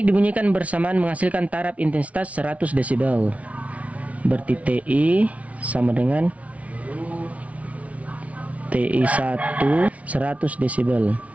dibunyikan bersamaan menghasilkan taraf intensitas 100 desibel. Berarti TI sama dengan TI 1 100 desibel.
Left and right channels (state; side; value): late; left; 0.066 ms